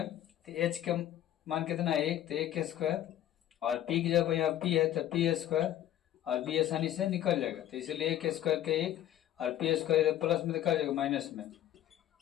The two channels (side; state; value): right; quieter; 12.2 dB